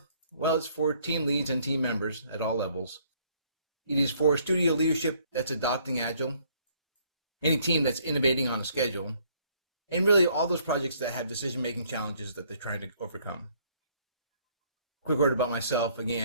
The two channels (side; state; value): both; inverted; correlation -0.64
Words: Well, it's for team leads and team members at all levels. It is for studio leadership that's adopting Agile, any team that's innovating on a schedule, and really all those projects that have decision-making challenges that they're trying to overcome. Quick word about myself.